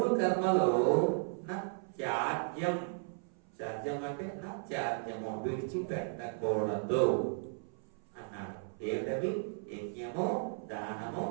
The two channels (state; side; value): silent; left; 54 dB below the other